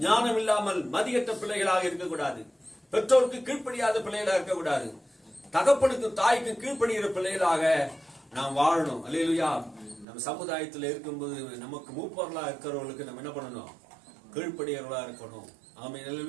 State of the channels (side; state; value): left; drops out; at 10.1 s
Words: ஞானம் இல்லாமல் மதியற்ற பிள்ளைகளாக இருக்கக்கூடாது. பெற்றோருக்கு கீழ்ப்படியாத பிள்ளைகளாக இருக்கக்கூடாது. தகப்பனுக்கு தாய்க்கு கீழ்ப்படுகிற பிள்ளைகளாக நாம் வாழணும். அல்லேலூயா. நம்ம சமுதாயத்தில் இருக்கும்போது நமக்கு மூப்பர்களா இருக்கிறவர்களுக்கு நம்ம என்ன பண்ணணும்? கீழ்ப்படியவர்களா இருக்கணும். ஆமென்.